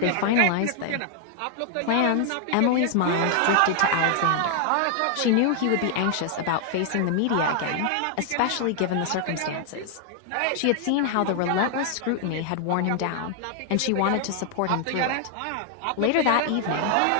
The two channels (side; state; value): both; different; correlation 0.00